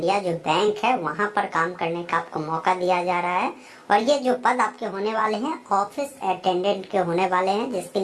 जो बैंक है वहां पर काम करने का आपको मौका दिया जा रहा है। और ये जो पद आपके होने वाले हैं ऑफिस अटेंडेंट के होने वाले हैं, जिसके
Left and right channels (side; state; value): both; identical; correlation 1.00